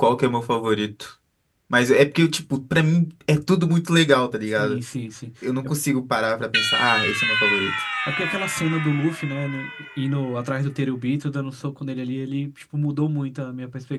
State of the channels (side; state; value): both; identical; correlation 1.00